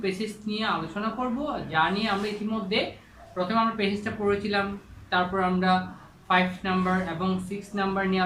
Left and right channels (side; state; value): both; identical; correlation 1.00